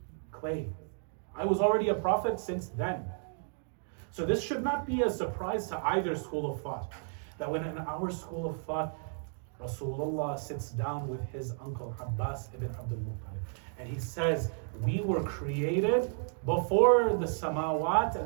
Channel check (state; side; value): silent; left; 56 dB below the other